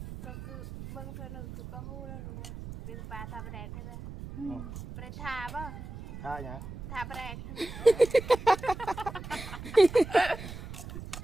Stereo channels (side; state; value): right; noise; rumble, 10 dB below the sound